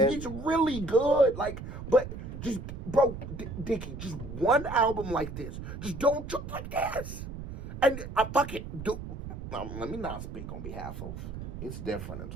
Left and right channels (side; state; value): right; noise; rumble, 9 dB below the sound